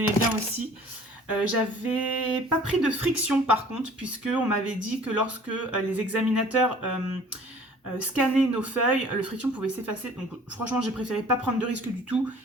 bien aussi. J'avais pas pris de friction par contre, puisqu'on m'avait dit que lorsque les examinateurs scannaient nos feuilles, le friction pouvait s'effacer. Donc franchement, j'ai préféré pas prendre de risque du tout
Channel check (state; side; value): normal; both; correlation 0.50